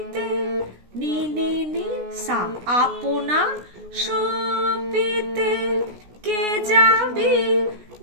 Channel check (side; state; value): left; late; 16 ms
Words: নি নি নি সা, আপনা সপিতে কে যাবি